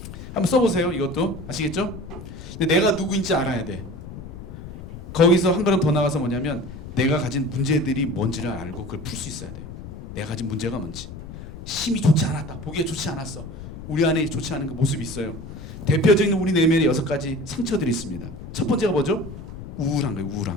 한번 써보세요. 이것도 아시겠죠? 근데 내가 누구인지 알아야 돼. 거기서 한 걸음 더 나가서 뭐냐면 내가 가진 문제들이 뭔지를 알고 그걸 풀 수 있어야 돼요. 내가 가진 문제가 뭔지. 힘이 좋지 않았다. 보기에 좋지 않았어. 우리 안에 좋지 않은 그 모습이 있어요. 대표적인 우리 내면에 6가지 상처들이 있습니다. 첫 번째가 뭐죠? 우울한 거예요.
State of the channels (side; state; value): left; noise; rumble, 12 dB below the sound